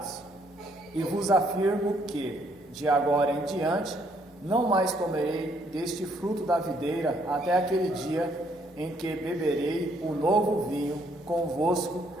E vos afirmo que, de agora em diante, não mais comerei deste fruto da videira até aquele dia em que beberei o novo vinho convosco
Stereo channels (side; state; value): both; normal; correlation 0.68